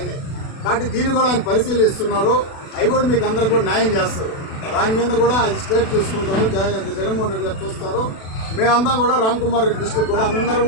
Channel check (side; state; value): right; late; 36 ms